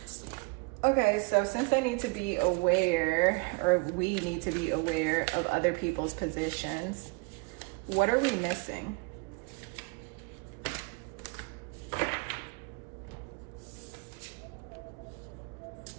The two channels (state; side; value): quieter; left; 30.3 dB